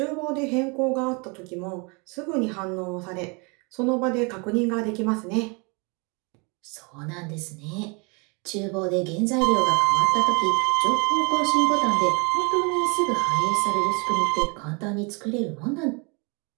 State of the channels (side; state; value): left; quieter; 31.2 dB